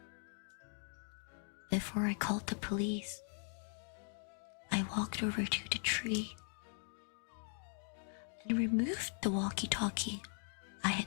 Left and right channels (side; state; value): right; silent; 51 dB below the other